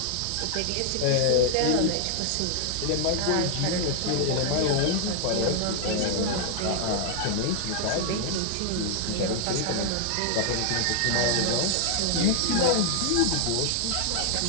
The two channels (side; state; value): both; different; correlation 0.00